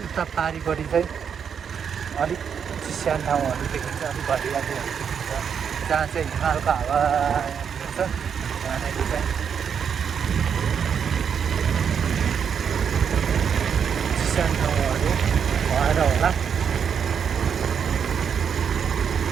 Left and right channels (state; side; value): quieter; left; 7.3 dB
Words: उता पारिपट्टि चाहिँ अलिक चिस्यान ठाउँहरू देखिन्छ, अलिक घरियालीहरू देखिन्छ, जहाँ चाहिँ हिमालको हावा छ त्यहाँनिर चाहिँ चिस्यान ठाउँहरू भएर होला